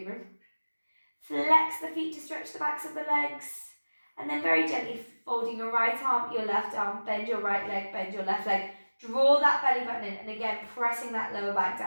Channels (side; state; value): both; inverted; correlation -1.00